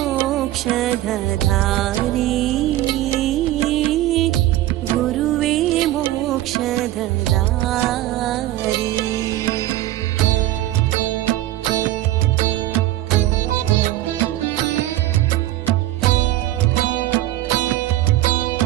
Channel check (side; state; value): left; quieter; 15.0 dB